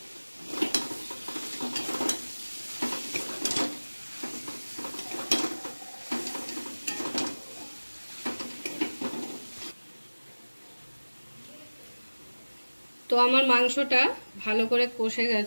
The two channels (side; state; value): both; inverted; correlation -1.00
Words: তো আমার মাংসটা ভালো করে কষে